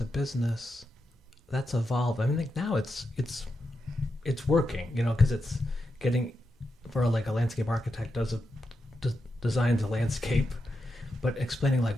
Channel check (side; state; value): both; normal; correlation 0.87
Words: business, that's evolved. I mean, like now it's working, because it's getting for like a landscape architect designs a landscape, but explaining like